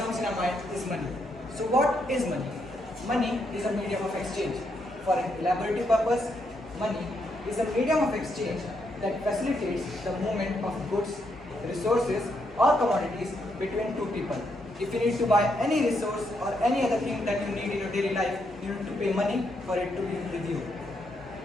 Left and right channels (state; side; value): normal; both; correlation 0.78